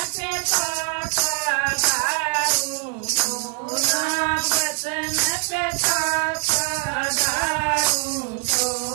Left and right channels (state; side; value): quieter; left; 36.3 dB